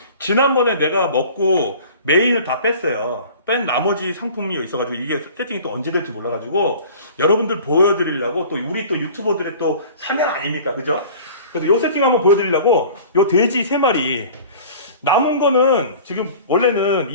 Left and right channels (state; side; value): inverted; both; correlation -0.44